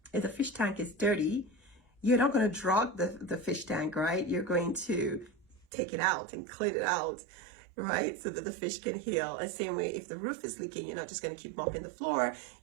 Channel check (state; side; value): drops out; left; at 5.7 s